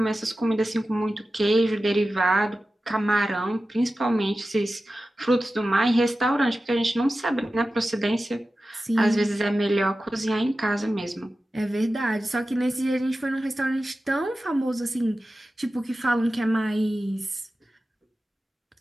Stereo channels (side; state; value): both; normal; correlation 0.94